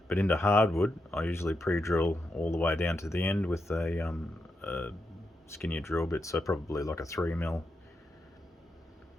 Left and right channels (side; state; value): both; normal; correlation 0.85